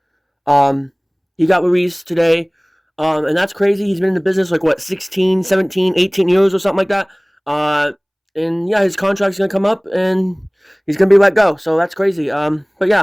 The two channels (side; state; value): both; identical; correlation 1.00